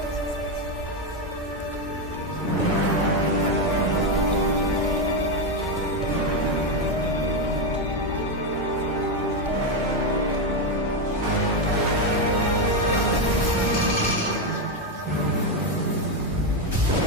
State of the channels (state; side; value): normal; both; correlation 0.07